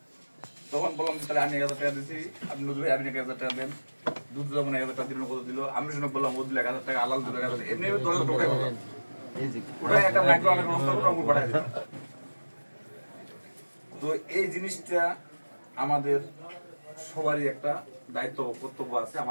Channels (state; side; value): inverted; both; correlation -1.00